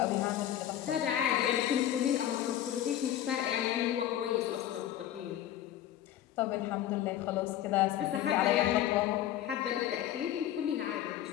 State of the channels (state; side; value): quieter; right; 12.0 dB